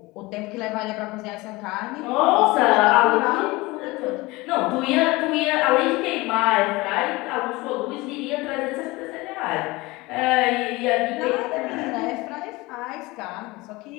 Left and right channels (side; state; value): right; quieter; 22.1 dB